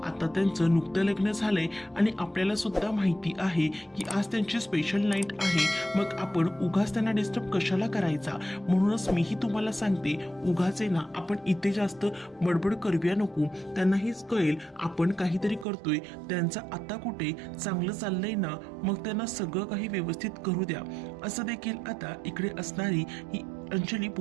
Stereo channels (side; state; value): left; drops out; at 15.7 s